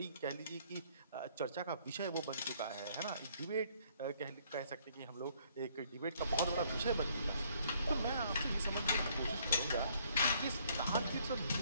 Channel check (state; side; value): inverted; both; correlation -0.64